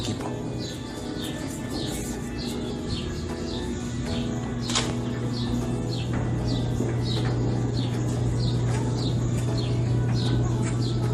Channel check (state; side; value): identical; both; correlation 1.00